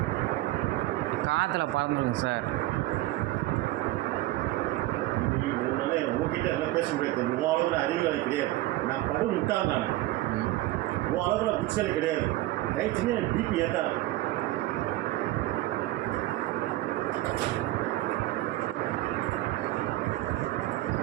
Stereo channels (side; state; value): left; quieter; 17.0 dB